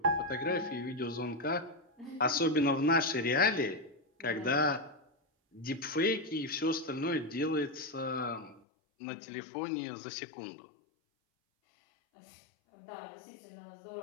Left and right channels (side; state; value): right; drops out; at 8.6 s